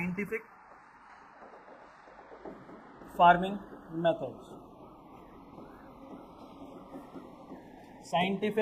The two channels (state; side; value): identical; both; correlation 1.00